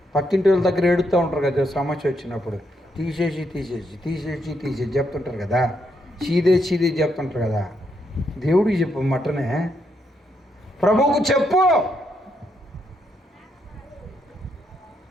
పక్కింటి వాళ్ళ దగ్గర ఏడుతూ ఉంటారు కదా సమస్య వచ్చినప్పుడు, తీసేసి చెప్తుంటారు కదా, చీదే చెప్తుంటారు కదా. దేవుడికి చెప్పు, మటనే ప్రభువుకు చెప్పు.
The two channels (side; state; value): both; normal; correlation 0.78